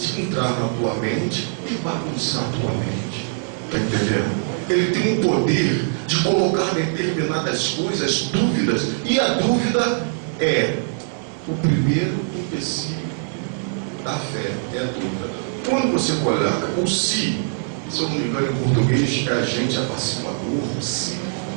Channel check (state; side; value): silent; left; 62 dB below the other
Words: entrar na tua mente e bagunçar a tua mente. Está entendendo? Ele tem o poder de colocar determinadas coisas, dúvidas. E a dúvida é o primeiro empecilho da fé. É a dúvida. Quando você coloca o se eu não me engano em português, é agente apaciguador, o se.